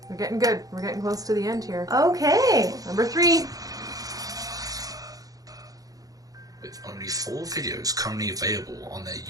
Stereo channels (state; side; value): late; left; 0.17 ms